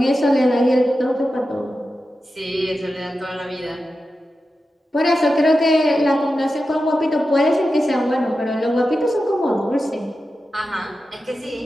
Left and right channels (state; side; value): normal; both; correlation 0.91